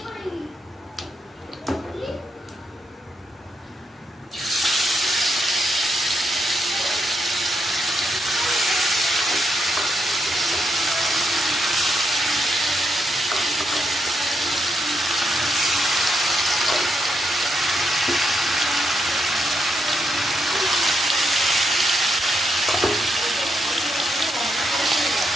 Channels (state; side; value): normal; both; correlation 0.81